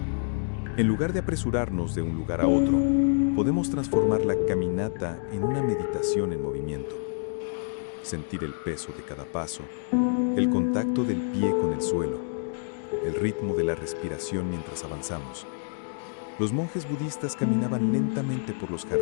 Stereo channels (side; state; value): right; silent; 60 dB below the other